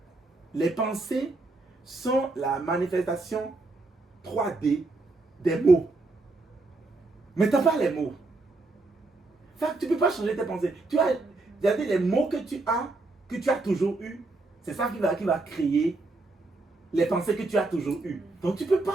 les pensées sont la manifestation 3D des mots. Mais tu n'as pas les mots. Fait que tu ne peux pas changer tes pensées. Tu as les mots que tu as toujours eu. C'est ça qui va créer les pensées que tu as toujours eues. Donc tu ne peux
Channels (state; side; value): quieter; left; 3.2 dB